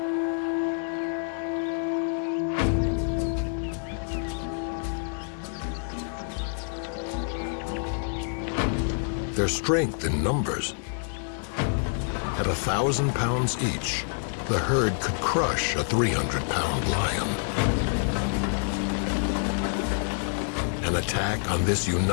Their strength in numbers. At 1,000 pounds each, the herd could crush a 300-pound lion. An attack on this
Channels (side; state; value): right; silent; 60 dB below the other